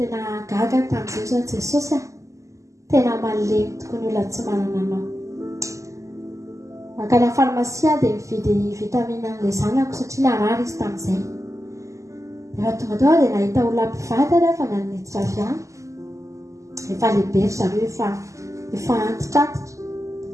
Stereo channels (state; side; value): late; left; 0.16 ms